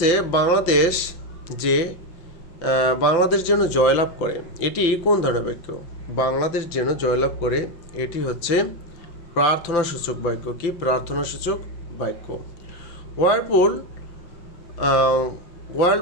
বাংলাদেশ যেন জয়লাভ করে, এটি কোন ধরনের বাক্য? বাংলাদেশ যেন জয়লাভ করে, এটি হচ্ছে প্রার্থনা সূচক বাক্য। কি? প্রার্থনা সূচক বাক্য।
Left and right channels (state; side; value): late; right; 5.9 ms